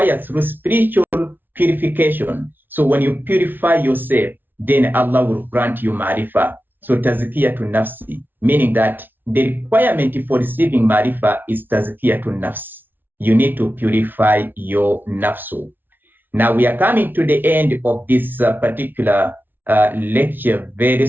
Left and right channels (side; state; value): left; late; 0.093 ms